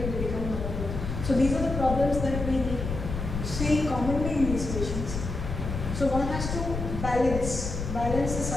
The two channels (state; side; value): noise; left; rumble, 5 dB below the sound